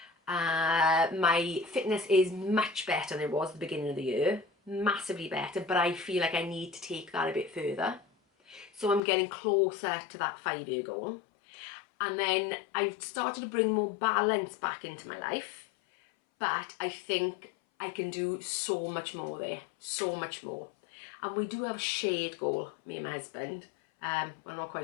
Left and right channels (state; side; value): drops out; right; at 9.0 s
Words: My fitness is much better than it was at the beginning of the year, massively better, but I feel like I need to take that a bit further. So I'm getting closer to that 5-year goal. And then I've started to bring more balance back into my life, but I think I can do so much more there, so much more. And we do have a shared goal, me and my husband. I'm not